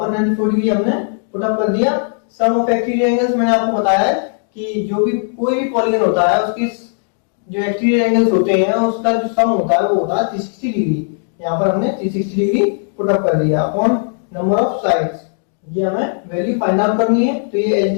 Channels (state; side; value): silent; right; digital silence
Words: 94 डिग्री हमने पुट अप कर दिया। सम ऑफ एक्सटीरियर एंगल्स मैंने आपको बताया है कि जो भी कोई भी पॉलीगन होता है उसकी जो एक्सटीरियर एंगल्स होते हैं उसका जो सम होता है वो होता है 360 डिग्री। यहाँ पर हमने 360 डिग्री पुट अप कर दिया अपॉन नंबर ऑफ साइड्स। ये हमें वैल्यू फाइंड आउट करनी है, तो ये